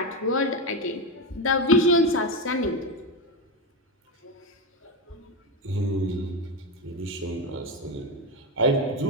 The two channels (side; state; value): both; normal; correlation 0.13